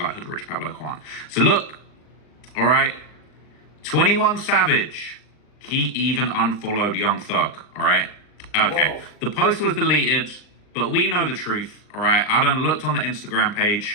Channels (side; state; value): right; late; 39 ms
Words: Hood Rich Pablo Juan. So look, all right, 21 Savage. He even unfollowed Young Thug, all right? Okay, whoa. The post was deleted, but we know the truth, all right? I done looked on the Instagram